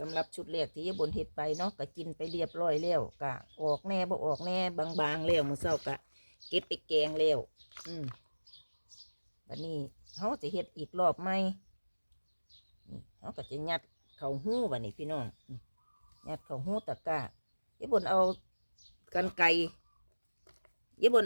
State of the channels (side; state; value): both; inverted; correlation -1.00